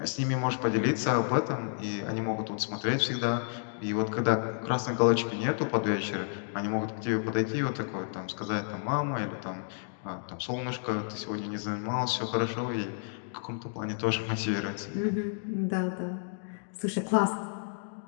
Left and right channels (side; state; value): right; silent; digital silence